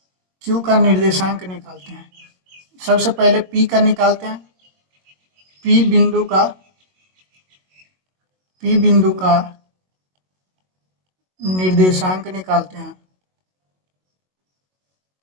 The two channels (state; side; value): late; left; 22 ms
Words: Q का निर्देशांक निकालते हैं। सबसे पहले P का निकालते हैं, P बिंदु का निर्देशांक निकालते हैं